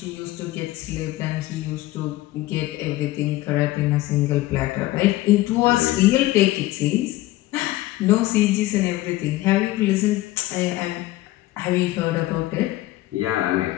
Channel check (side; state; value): right; quieter; 17.1 dB